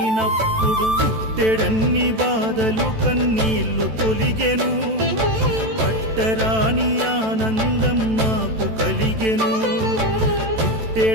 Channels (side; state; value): left; late; 14 ms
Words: పుట్టెడన్ని బాధలు కన్నీళ్లు తొలిగెను, పట్టరాని ఆనందం నాకు కలిగెను.